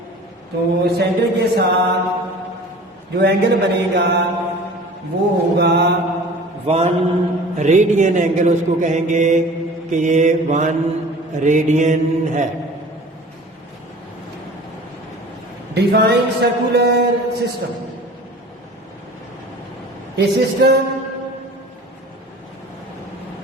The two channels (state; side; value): normal; both; correlation 0.43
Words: तो सेंटर के साथ जो एंगल बनेगा वो होगा 1 रेडियन एंगल, उसको कहेंगे कि ये 1 रेडियन है। Define circular system, a system